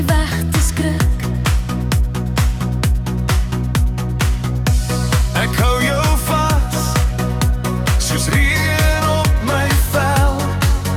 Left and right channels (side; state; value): both; identical; correlation 1.00